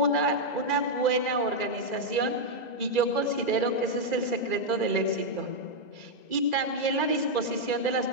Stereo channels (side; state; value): right; late; 2.0 ms